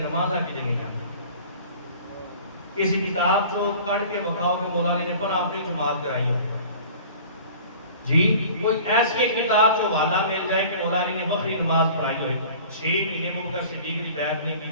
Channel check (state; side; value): inverted; both; correlation -0.45